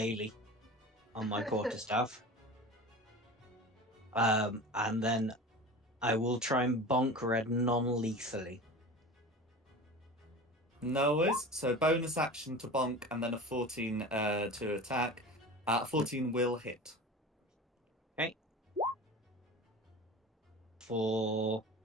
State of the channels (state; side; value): normal; both; correlation 0.34